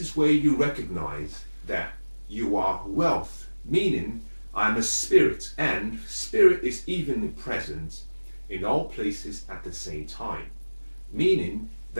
is where you recognize that you are wealth, meaning I'm a spirit, and spirit is evenly present in all places at the same time. Meaning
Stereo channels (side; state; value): both; inverted; correlation -1.00